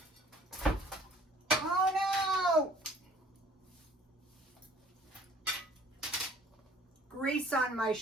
Oh no! Grease on my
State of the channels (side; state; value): both; normal; correlation 0.55